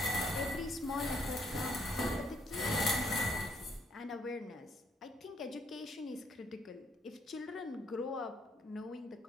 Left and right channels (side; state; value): both; normal; correlation 0.70